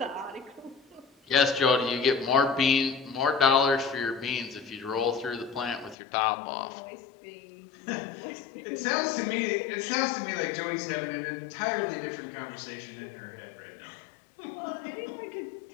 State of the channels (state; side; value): drops out; right; at 6.0 s